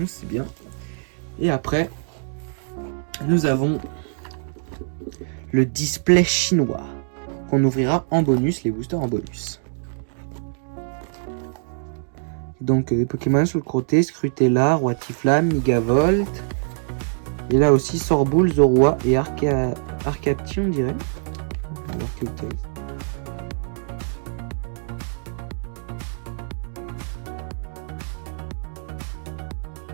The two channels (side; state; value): left; silent; digital silence